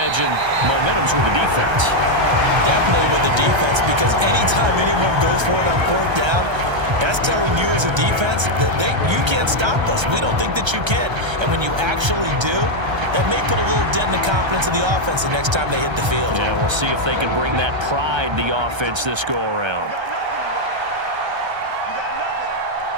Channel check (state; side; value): late; left; 1.3 ms